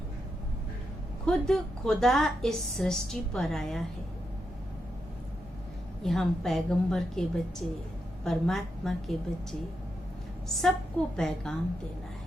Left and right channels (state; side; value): noise; left; hum, 21 dB below the sound